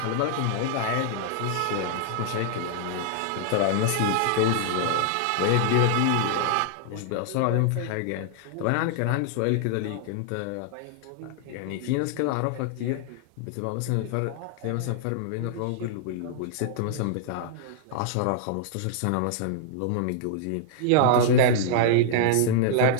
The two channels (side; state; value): both; different; correlation -0.01